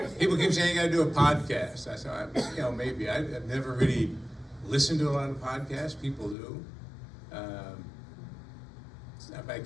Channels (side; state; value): right; drops out; at 6.4 s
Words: People keep saying I gotta do a podcast. I said, maybe. I've never really listened to a lot of podcasts. People do. I